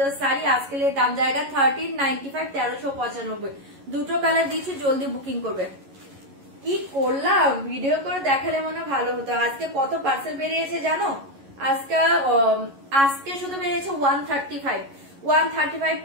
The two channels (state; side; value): late; left; 11 ms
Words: साड़ी, आज के लिए दाम जाएगा 1395, 1395। দুটো কালার দিচ্ছি, জলদি বুকিং করবে। কি করলাম, ভিডিও করে দেখালে মনে ভালো হতো। আজকে কত পার্সেল বেরিয়েছে জানো? আজকে শুধু বেরিয়েছে 135